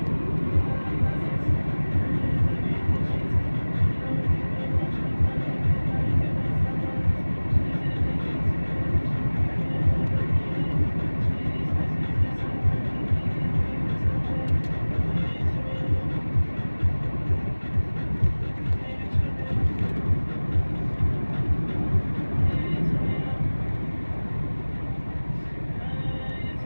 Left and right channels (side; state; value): both; inverted; correlation -1.00